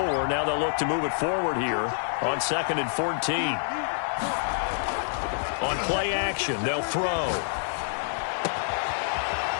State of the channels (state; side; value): silent; right; digital silence